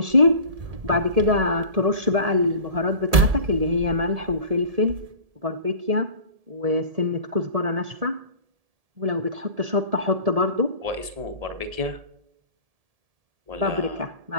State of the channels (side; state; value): left; late; 1.7 ms